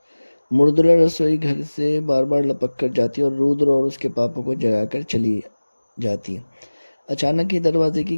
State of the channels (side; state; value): both; inverted; correlation -1.00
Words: मृदुला रसोई घर से बार बार लपक कर जाती और रुद्र और उसके पापा को जगाकर चली जाती। अचानक ही दरवाजे की